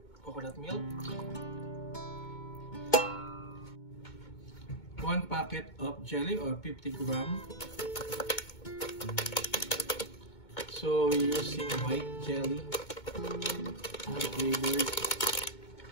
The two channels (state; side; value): late; right; 2.2 ms